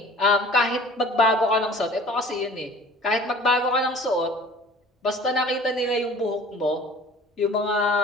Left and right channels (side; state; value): both; normal; correlation 0.46